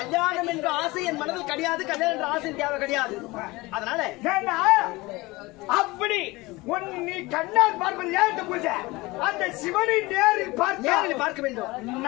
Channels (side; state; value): right; quieter; 21.9 dB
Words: என்ற ஆசை என் மனதில் கிடையாது. கல்யாணம் என்ற ஆசை தேவை கிடையாது. அதனால அப்படி நீ கண்ணால் பார்ப்பது ஏன் பூஜை? அந்த சிவனை நேரில் பார்க்க வேண்டும்.